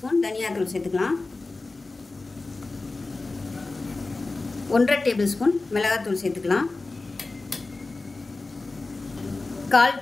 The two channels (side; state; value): right; quieter; 3.4 dB